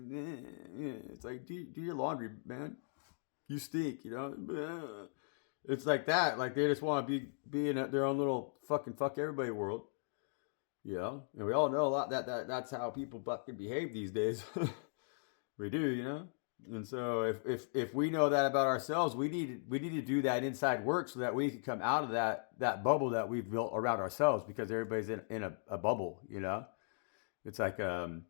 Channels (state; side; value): silent; right; digital silence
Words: it's like do your laundry, man, you stink, it's like that, like they just want to be in their own little fucking fuck everybody world, and we all know a lot that's how people fucking behave these days. We do, and so if we know that about ourselves, we need to do that inside work so that we can come out of that bubble that we've built around ourselves, because everybody's in a bubble, It's like